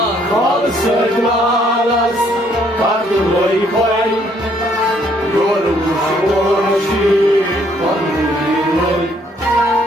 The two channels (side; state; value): both; normal; correlation 0.66